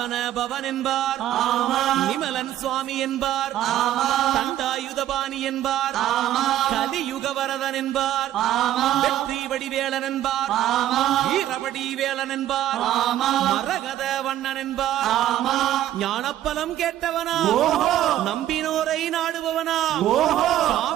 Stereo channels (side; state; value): left; quieter; 12.6 dB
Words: பவன் என்பார், நிமலன் சுவாமி என்பார், தண்டாயுதபாணி என்பார், கலியுக வரதன் என்பார், வெற்றி வடிவேலன் என்பார், வீரபடி வேலன் என்பார், மரகத வண்ணன் என்பார், ஞானப்பலம் கேட்டவனா, நம்பினோரை நாடுபவனா,